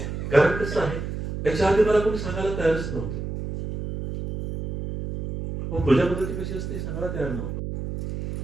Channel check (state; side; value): noise; right; hum, 5 dB below the sound